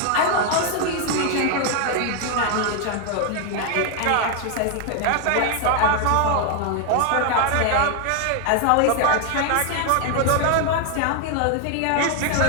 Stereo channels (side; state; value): both; different; correlation 0.00